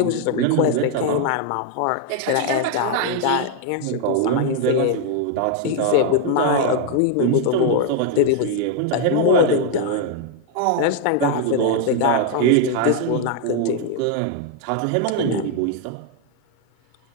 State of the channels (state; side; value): different; both; correlation 0.00